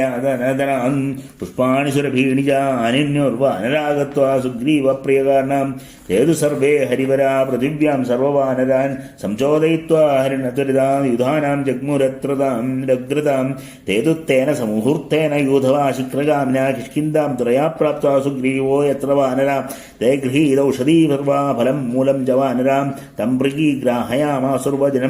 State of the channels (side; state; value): both; identical; correlation 1.00